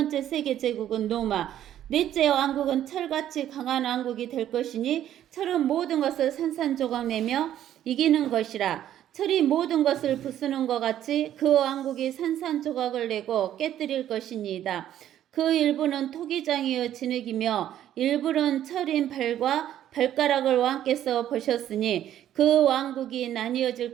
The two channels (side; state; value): left; quieter; 11.5 dB